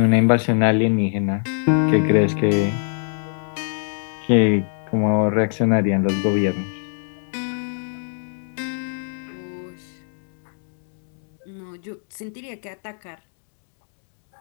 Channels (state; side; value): silent; right; digital silence